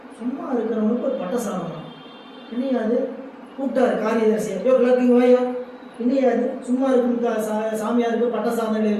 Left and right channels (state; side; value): identical; both; correlation 1.00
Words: சும்மா இருக்கிறவனுக்கு ஒரு பட்டை சாதம். என்னையாது கூப்பிட்டாரு காரியதர்சியை, எல்லாத்தையும் வாயா, என்னையாது சும்மா இருக்கும் சாமியாருக்கு பட்டை சாதம் எழுதி